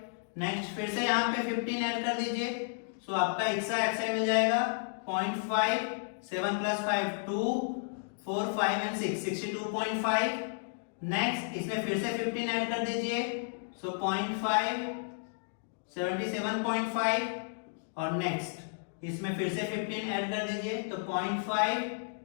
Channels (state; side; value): silent; right; digital silence